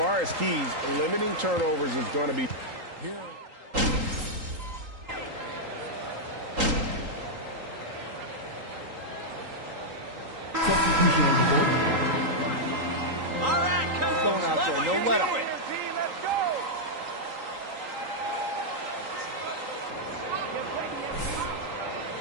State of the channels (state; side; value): late; left; 3.8 ms